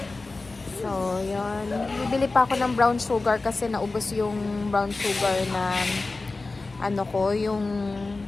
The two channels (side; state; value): right; quieter; 3.5 dB